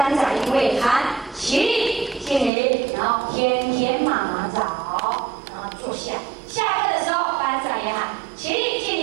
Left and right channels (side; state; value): left; drops out; at 2.5 s